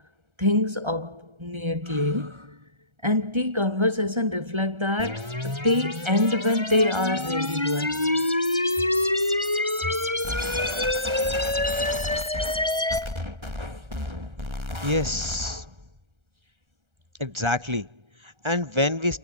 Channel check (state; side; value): late; left; 1.3 ms